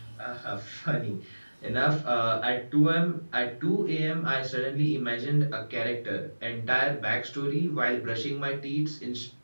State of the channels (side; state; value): both; inverted; correlation -1.00